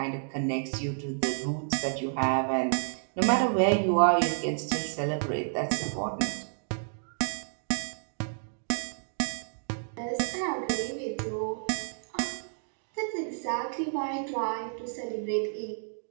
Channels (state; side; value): silent; left; digital silence